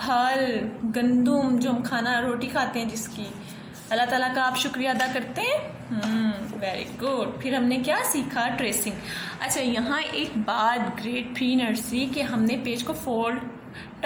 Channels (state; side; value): identical; both; correlation 1.00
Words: गंदुम जो हम खाना रोटी खाते हैं जिसकी, अल्लाह ताला का आप शुक्रिया अदा करते हैं। Very good. फिर हमने क्या सीखा? ट्रेसिंग। अच्छा, यहाँ एक बात ग्रेड प्री नर्सरी के हमने पेज को फोल्ड